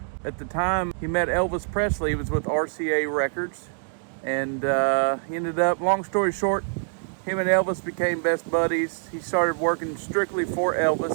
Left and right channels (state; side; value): silent; left; 62 dB below the other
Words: At the time he met Elvis Presley, he was with RCA Records, and he ended up, long story short, him and Elvis became best buddies. He started working strictly for Elvis